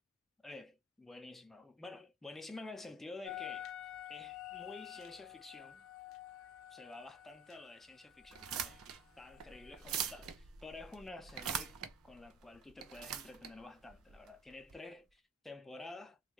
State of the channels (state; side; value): normal; both; correlation 0.46